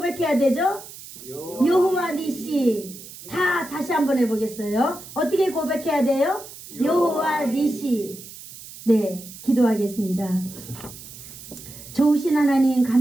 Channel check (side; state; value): right; noise; hiss, 16 dB below the sound